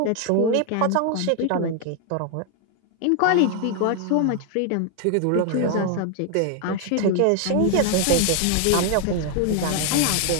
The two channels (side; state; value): both; different; correlation 0.00